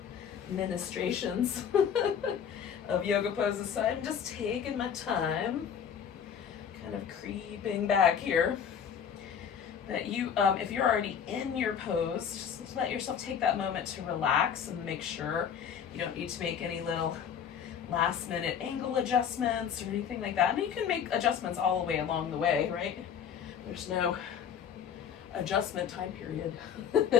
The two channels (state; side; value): quieter; right; 8.0 dB